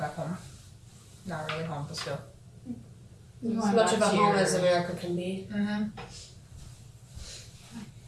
home. Not really home, but still. You're As going much back of a to home your- as America can be. Mm-hmm.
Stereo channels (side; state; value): both; identical; correlation 1.00